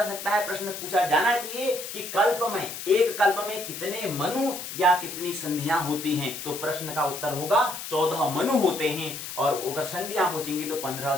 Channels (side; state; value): left; noise; hiss, 8 dB below the sound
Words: सकता है, प्रश्न पूछा जाना चाहिए कि कल्प में, एक कल्प में कितने मनु या कितनी संधियां होती हैं। तो प्रश्न का उत्तर होगा 14 मनु होते हैं। और अगर संधियां पूछेंगी तो 15